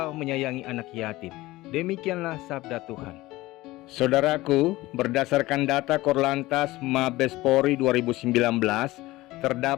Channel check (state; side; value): quieter; right; 18.6 dB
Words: menyayangi anak yatim." Demikianlah sabda Tuhan. Saudaraku, berdasarkan data Korlantas Mabes Polri 2019,